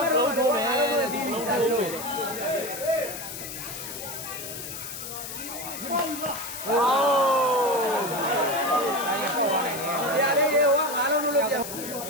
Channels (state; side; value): noise; left; hiss, 9 dB below the sound